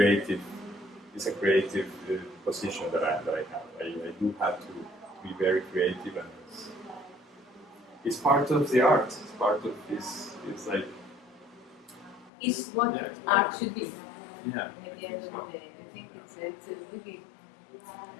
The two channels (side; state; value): right; drops out; at 12.3 s